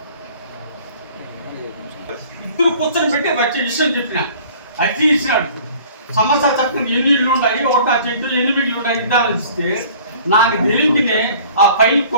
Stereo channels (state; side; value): inverted; both; correlation -0.50